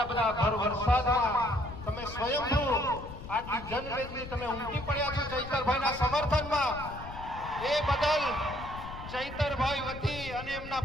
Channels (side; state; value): left; noise; rumble, 12 dB below the sound